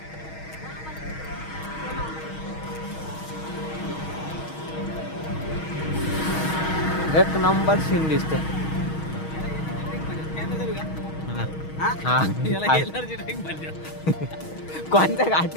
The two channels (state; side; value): late; right; 6.3 ms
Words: एक नंबर सीन दिसते. कोणता